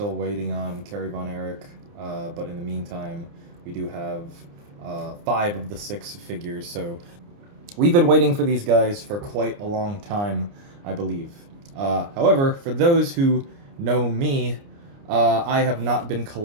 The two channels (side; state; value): left; late; 29 ms